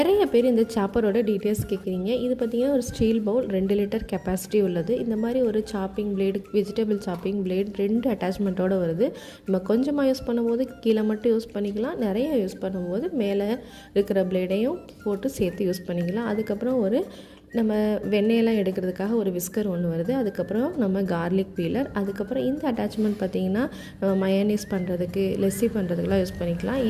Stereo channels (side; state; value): both; identical; correlation 1.00